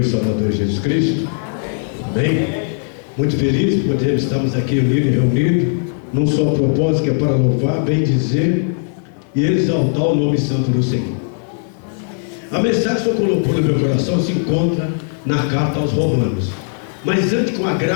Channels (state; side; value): silent; right; digital silence